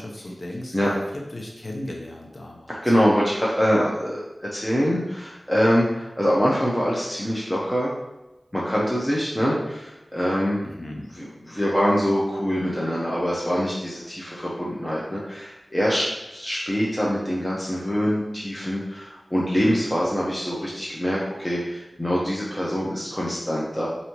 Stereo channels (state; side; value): normal; both; correlation 0.97